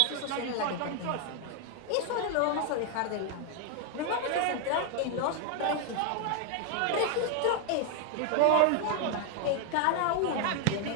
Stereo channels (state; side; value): different; both; correlation 0.01